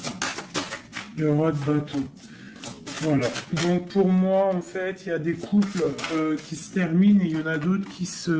Le roi de bâton. Voilà. Donc pour moi, en fait, il y a des couples qui se terminent et il y en a d'autres qui se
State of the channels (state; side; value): identical; both; correlation 1.00